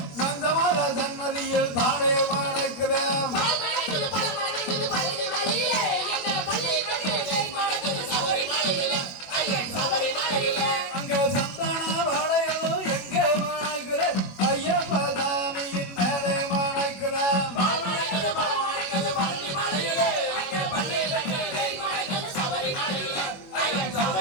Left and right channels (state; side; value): late; right; 21 ms